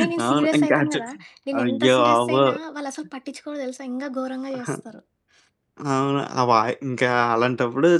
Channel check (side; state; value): both; identical; correlation 1.00